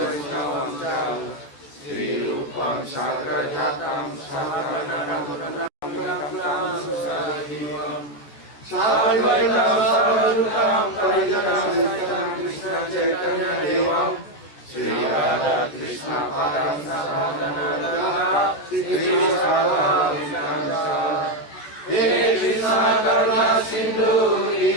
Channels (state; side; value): late; right; 14 ms